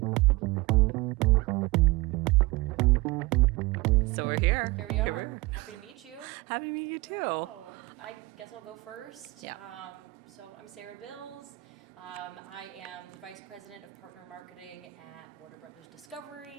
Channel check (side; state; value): left; quieter; 22.0 dB